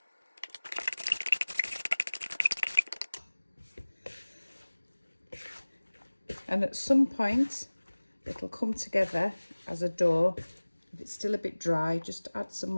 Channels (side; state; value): both; inverted; correlation -1.00